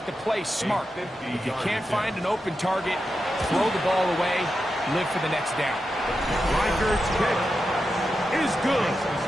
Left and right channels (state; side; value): normal; both; correlation 0.89